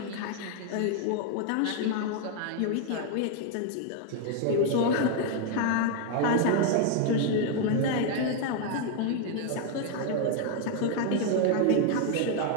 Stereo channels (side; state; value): both; different; correlation 0.01